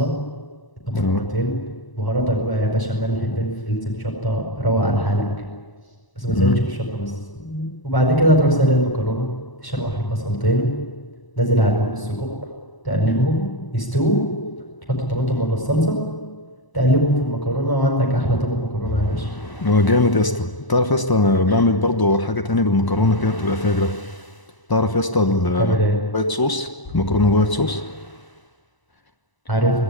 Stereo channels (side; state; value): right; late; 1.0 ms